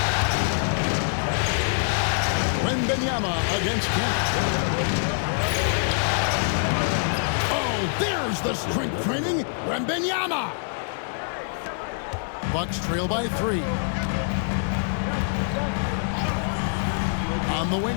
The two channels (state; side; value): silent; right; digital silence